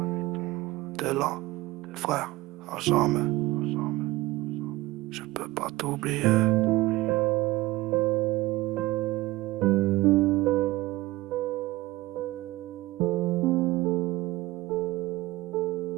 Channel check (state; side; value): quieter; left; 18.8 dB